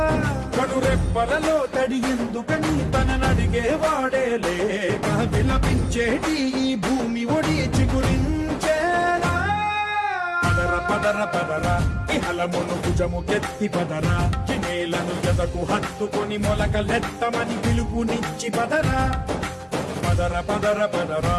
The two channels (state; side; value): identical; both; correlation 1.00